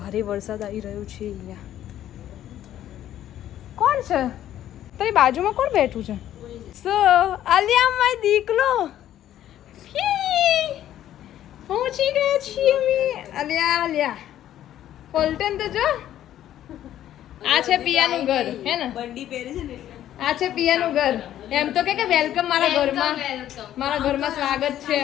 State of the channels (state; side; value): quieter; right; 11.9 dB